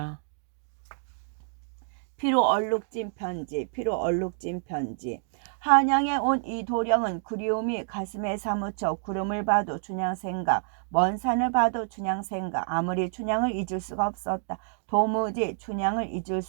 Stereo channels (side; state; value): left; silent; digital silence